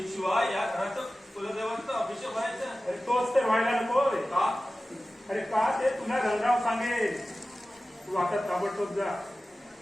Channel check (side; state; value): both; normal; correlation 0.96